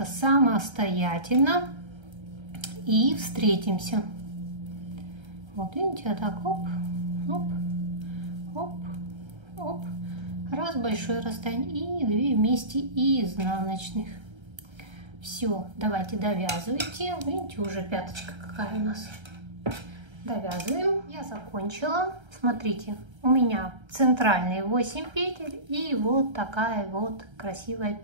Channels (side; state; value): left; late; 1.3 ms